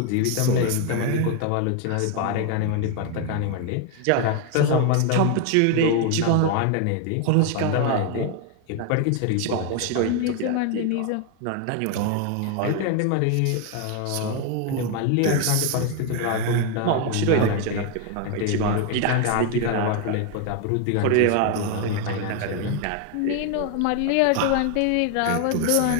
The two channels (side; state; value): both; different; correlation 0.01